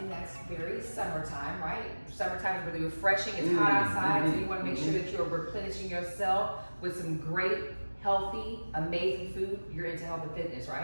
that's very summertime, right? Summertime is really refreshing, it's hot outside, so you want to make sure that you're replenishing yourself with some great, healthy, amazing food. You're into health and fitness,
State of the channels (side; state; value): both; inverted; correlation -1.00